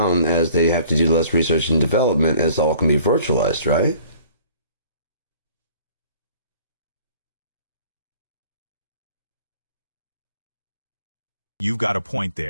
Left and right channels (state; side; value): inverted; both; correlation -0.53